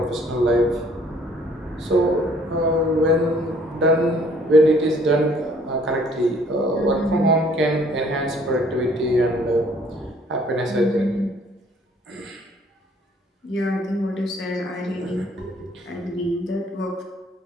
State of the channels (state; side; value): normal; both; correlation 0.59